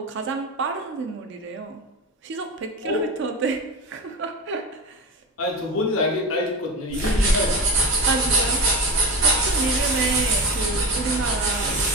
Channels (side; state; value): both; normal; correlation 0.24